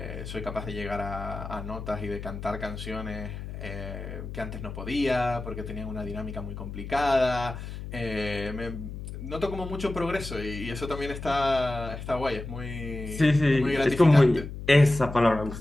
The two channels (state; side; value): noise; left; hum, 9 dB below the sound